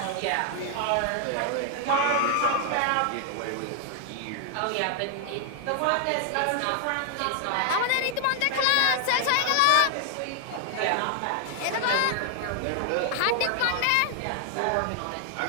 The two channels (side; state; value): both; different; correlation 0.00